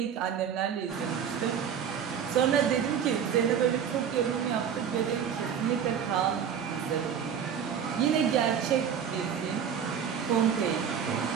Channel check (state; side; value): quieter; left; 8.0 dB